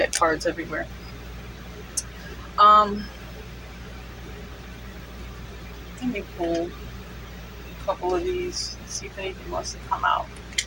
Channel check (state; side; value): identical; both; correlation 1.00